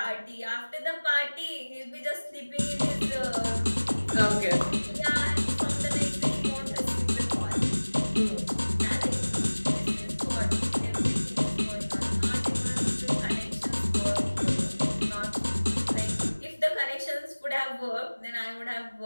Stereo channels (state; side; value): inverted; both; correlation -1.00